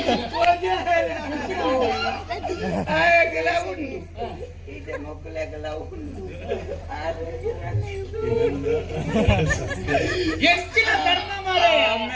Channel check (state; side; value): identical; both; correlation 1.00